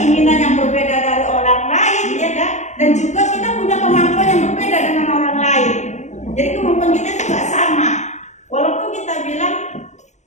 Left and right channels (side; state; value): right; late; 0.34 ms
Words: yang berbeda dari orang lain, ya kan? Dan juga kita punya kemampuan yang berbeda dengan orang lain. Jadi kemampuan kita itu nggak sama. Walaupun kita bilang,